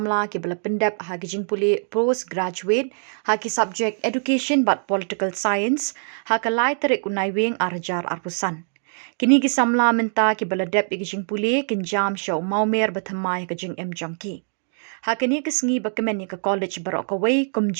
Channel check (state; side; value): silent; left; 59 dB below the other